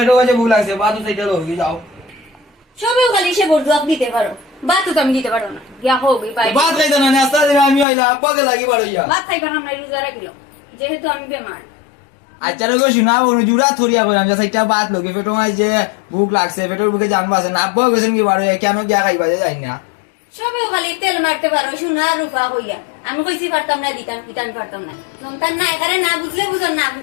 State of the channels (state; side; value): drops out; right; at 7.9 s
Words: কাছে ভুল আছে বাদু সেইটা লই যাও সবেও খালি সে বলতো আপনি দিতে পারো বাতও তো আমি দিতে পারো না গিয়া হোক ভাই বাদ খাইতো না নাস্তা দিনে আমি হইলা আব্বাকে লাগি বাড়ো ইয়া ভাত খাইবার আমরা রোজা রাখিল যেহেতু আমি বেমার আচ্ছা লোক শুনা বলো জুড়া থরিয়া করে আমি সেইটা বাদ লোকে পেটো মাই যে ভুক লাগছে পেটোর বুকে জানবা আছে না আব্বাও গেছেন কি বাড়ো কেন গিয়া খাইবা যাই না সবেও খালি তেল মারতে পারো সোনা রূপা হইয়া আমি কইছি পারতাম না দিতাম দিতাম পারতাম না সন্তান না এখানে না বুঝলে বুঝন না